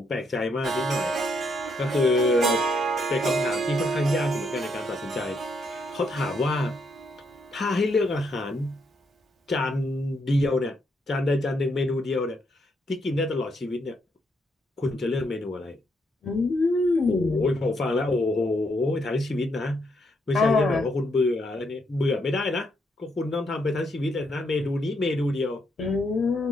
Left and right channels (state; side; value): normal; both; correlation 0.76